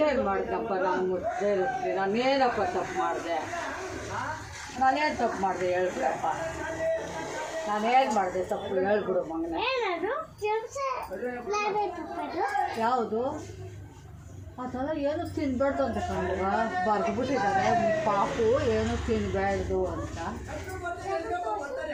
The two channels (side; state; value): both; identical; correlation 1.00